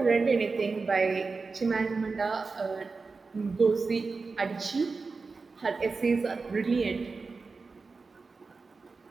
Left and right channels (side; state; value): left; quieter; 4.3 dB